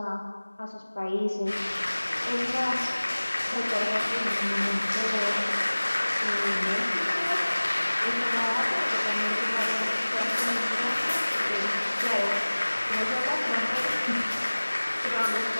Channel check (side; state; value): both; inverted; correlation -1.00